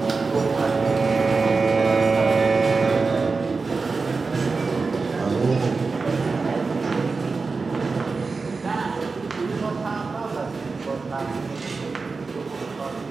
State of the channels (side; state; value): left; quieter; 4.3 dB